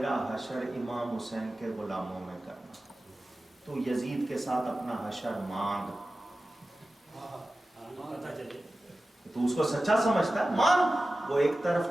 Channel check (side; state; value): both; normal; correlation 0.95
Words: حشر امام حسین کے غلاموں میں کرنا, تو یزید کے ساتھ اپنا حشر مانگ. پتا چلے تو اس کو سچا سمجھتا ہے, مانگ. وہ ایک طرف